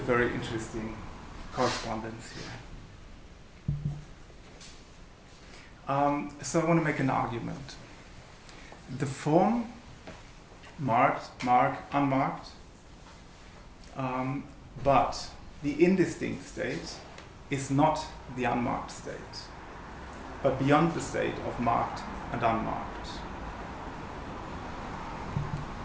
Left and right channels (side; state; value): both; identical; correlation 1.00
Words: interesting correspondence here. So I want to make an argument. The form, marked, unmarked, but the indistinct state is not the unmarked state, but beyond the state of marked and unmarked.